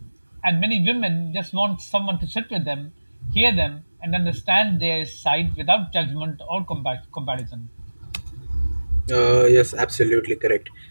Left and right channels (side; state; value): both; inverted; correlation -1.00